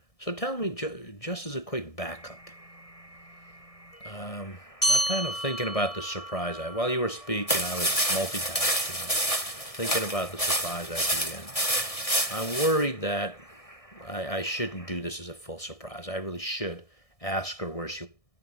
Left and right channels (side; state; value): right; late; 1.6 ms